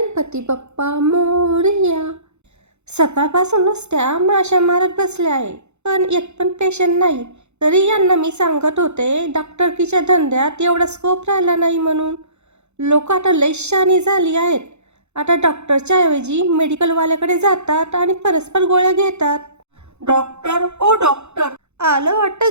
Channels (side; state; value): left; late; 0.81 ms